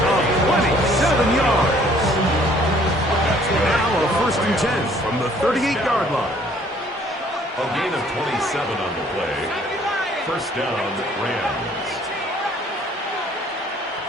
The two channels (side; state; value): both; normal; correlation 0.59